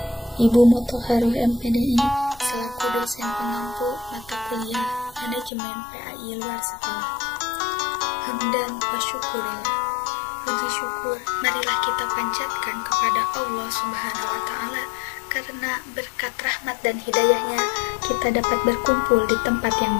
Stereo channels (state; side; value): drops out; right; at 5.5 s